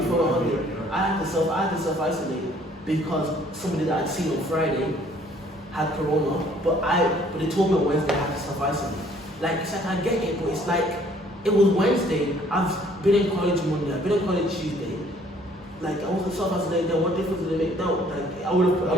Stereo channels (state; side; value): normal; both; correlation 0.59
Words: my holiday, I had to self-isolate because somebody that I'd seen on Friday had corona, but they told me on Wednesday I had to self-isolate. Like, it's like I get it, but it's like, it was Wednesday, I've been in college Monday, I've been in college Tuesday. Like, I wasn't self-isolated, then what difference did it make now? Like, I